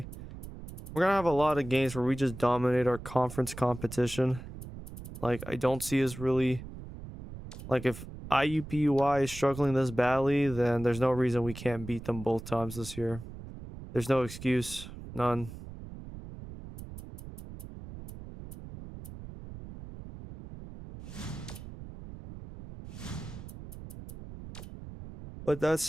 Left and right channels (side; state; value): right; noise; rumble, 12 dB below the sound